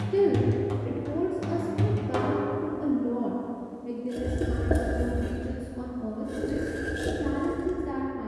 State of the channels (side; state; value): both; identical; correlation 1.00